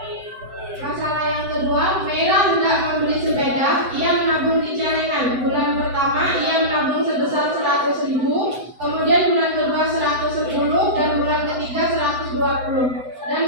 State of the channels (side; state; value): left; late; 7.8 ms